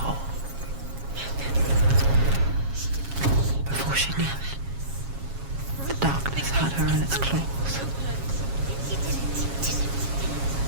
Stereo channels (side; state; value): left; late; 7.3 ms